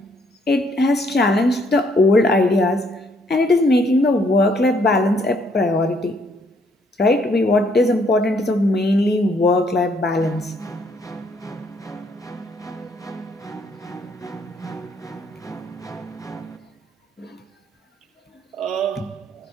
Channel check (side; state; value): both; normal; correlation 0.68